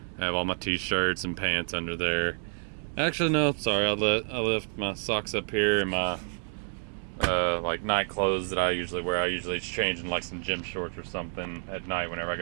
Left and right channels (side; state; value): left; silent; 59 dB below the other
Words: I have all my t-shirts and pants under there. Actually, no, sorry, I left my socks up here and my like night clothes that I usually wear. I usually change in like some gym shorts or something at night whenever I